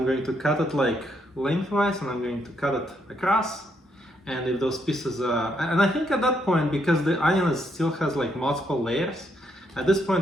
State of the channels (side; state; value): both; normal; correlation 0.75